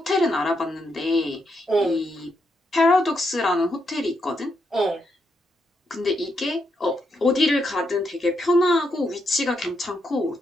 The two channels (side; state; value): both; normal; correlation 0.80